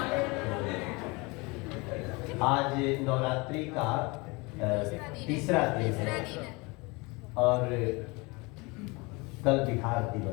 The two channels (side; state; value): right; quieter; 26.5 dB